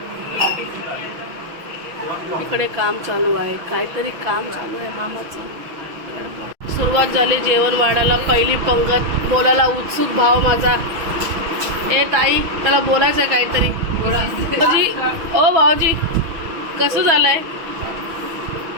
इकडे काम चालू आहे. काहीतरी काम चालू आहे मामाचं. सुरुवात झाली जेवण वाढायला. पहिली पंगत. बोलायला उत्सुक भाव माझा. ए ताई त्याला बोलायचं आहे काहीतरी. भाऊजी ओ भाऊजी कसं झालंय?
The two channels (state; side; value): late; left; 6.1 ms